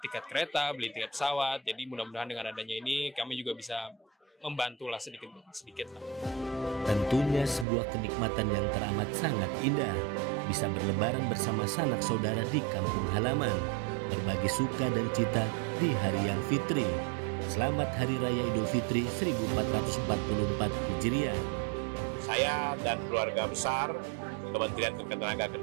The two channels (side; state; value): left; drops out; at 7.7 s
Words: tiket kereta, beli tiket pesawat. Jadi mudah-mudahan dengan adanya ini kami juga bisa membantulah sedikit. Tentunya sebuah kenikmatan yang teramat sangat indah. Bisa berlebaran bersama sanak saudara di kampung halaman. Berbagi suka dan cita di hari yang fitri. Selamat Hari Raya Idul Fitri 1444 Hijriah. Saya dan keluarga besar Kementerian